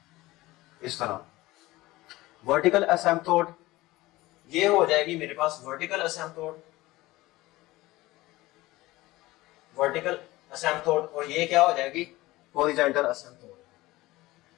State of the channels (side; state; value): right; quieter; 18.9 dB